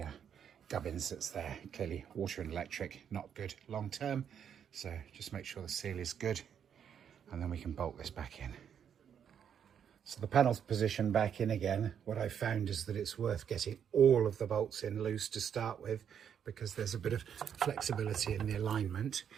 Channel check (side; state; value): left; quieter; 8.3 dB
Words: gubbins that's there. Clearly water and electric, not good long term, so just make sure the seal is good, and then we can bolt this back in. So the panel's positioned back in again. What I've found is that it's worth getting all of the bolts in loose to start with, because there's a bit of flexibility in the alignment.